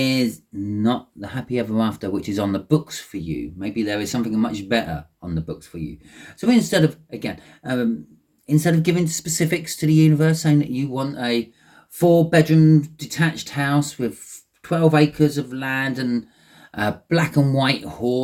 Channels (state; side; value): identical; both; correlation 1.00